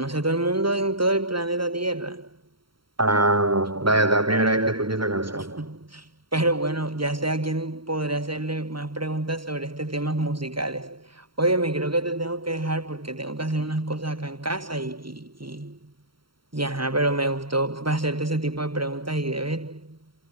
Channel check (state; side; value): late; left; 0.73 ms